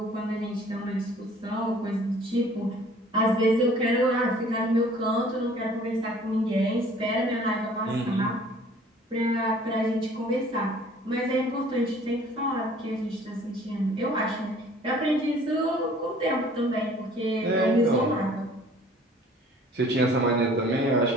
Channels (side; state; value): both; normal; correlation 0.52